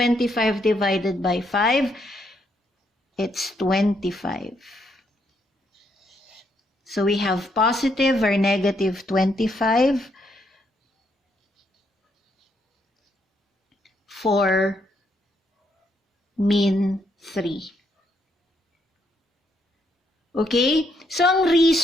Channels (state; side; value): normal; both; correlation 0.75